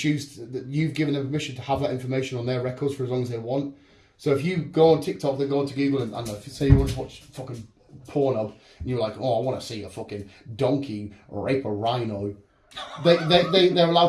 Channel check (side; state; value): both; identical; correlation 1.00